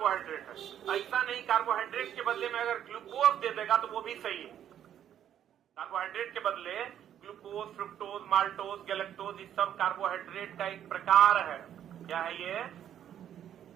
है। ऐसा नहीं कार्बोहाइड्रेट के बदले में अगर ग्लूकोज दे देगा तो वो भी सही है। कार्बोहाइड्रेट के बदले ग्लूकोज, फ्रुक्टोज, माल्टोज, गैलेक्टोज ये सब कार्बोहाइड्रेट का एक प्रकार है। क्या है ये?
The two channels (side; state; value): left; quieter; 10.2 dB